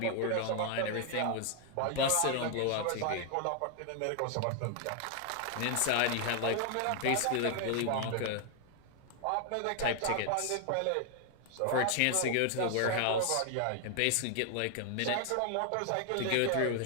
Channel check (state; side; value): different; both; correlation 0.00